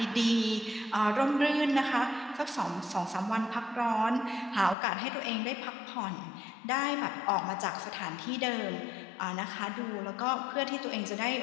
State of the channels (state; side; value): drops out; right; at 4.8 s